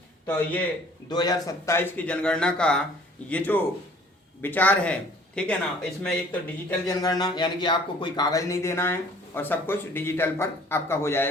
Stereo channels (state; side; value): normal; both; correlation 0.54